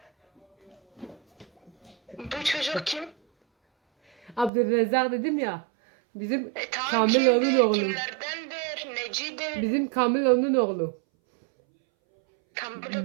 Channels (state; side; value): drops out; left; at 4.5 s